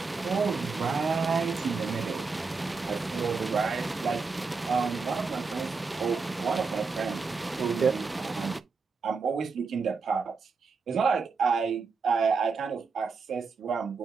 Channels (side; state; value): left; quieter; 4.7 dB